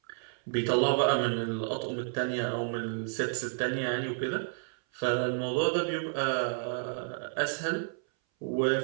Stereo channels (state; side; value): silent; left; 57 dB below the other